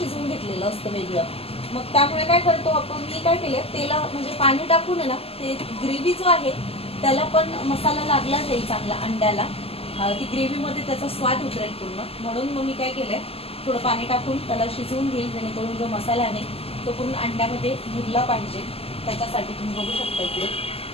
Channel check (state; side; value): late; right; 0.28 ms